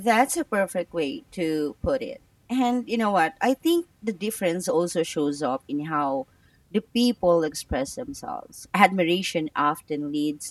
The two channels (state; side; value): identical; both; correlation 1.00